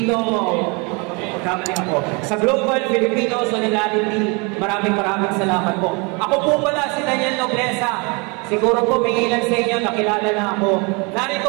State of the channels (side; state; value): left; quieter; 30.4 dB